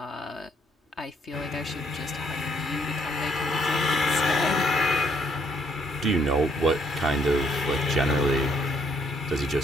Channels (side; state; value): both; normal; correlation 0.69